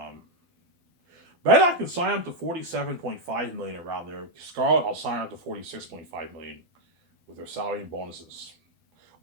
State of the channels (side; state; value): left; late; 12 ms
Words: I can sign up to 47.5 million around there. Scarlett, I'll sign up to 46.5 million with their salary and bonuses.